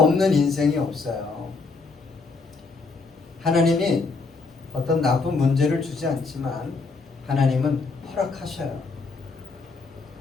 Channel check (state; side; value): quieter; right; 4.1 dB